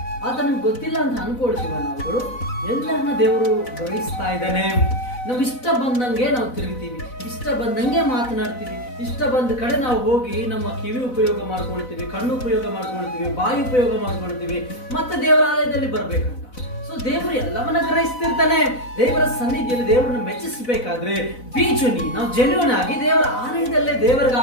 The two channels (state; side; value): late; right; 4.0 ms